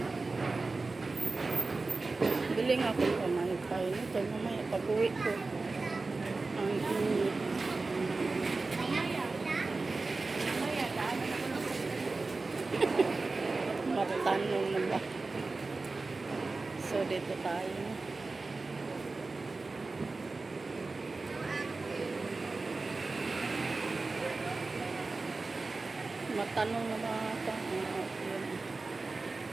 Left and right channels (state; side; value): quieter; left; 3.7 dB